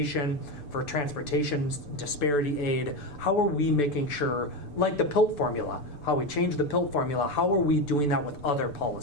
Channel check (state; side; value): late; right; 6.9 ms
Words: for transportation disparity aid? How are we making sure, like the PILT formula, how we change the PILT formula, how are we doing that with other